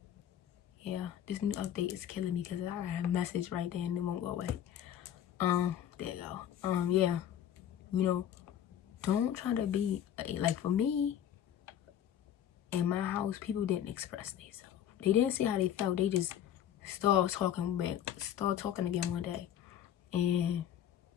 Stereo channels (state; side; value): quieter; right; 10.3 dB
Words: yeah, this new update is killing me because I have a message right there and it won't go away. There you go. Yeah, you know, don't try to be like, for me in my house, people didn't express themselves. They didn't say how they felt. They just start talking again one day. And